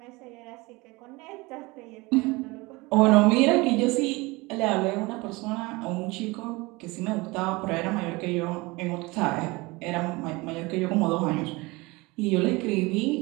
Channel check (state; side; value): quieter; left; 23.6 dB